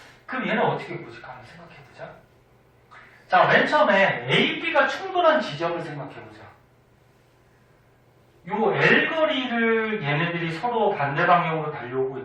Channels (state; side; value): identical; both; correlation 1.00